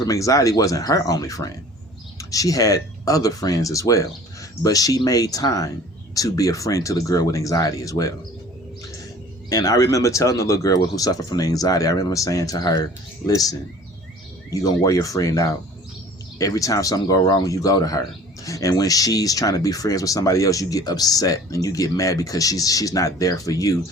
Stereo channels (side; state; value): both; normal; correlation 0.47